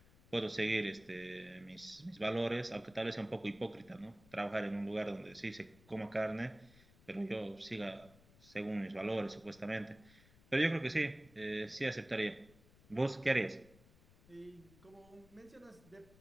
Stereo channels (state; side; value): noise; left; rumble, 25 dB below the sound